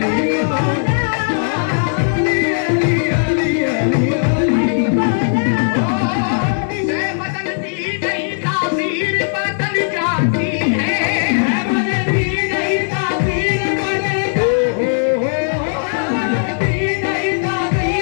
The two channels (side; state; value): right; silent; digital silence